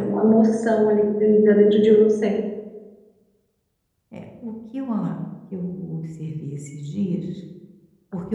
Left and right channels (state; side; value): identical; both; correlation 1.00